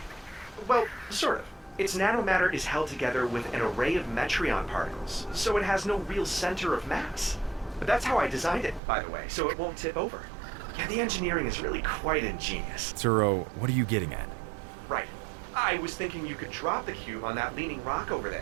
Well, sort of. Its nanomatter is held together with an array of metreon particles, so it has no real center of mass. But that's how I designed it, by the way, so it won't tip over. Yeah, the engineering is really quite ingenious. Turo, what are you getting at? Right. I was thinking you could drop the cube on that leaning rock over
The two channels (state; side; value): drops out; left; at 8.8 s